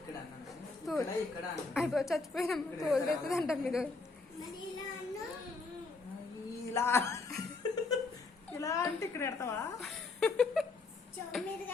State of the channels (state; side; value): quieter; right; 3.9 dB